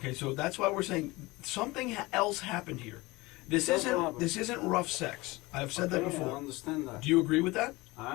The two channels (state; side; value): quieter; right; 21.9 dB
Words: so that's why we're saying something else happened here. This That's what isn't happened. this isn't rough sex. I've said that Okay, I before. understand that. Do you agree with that?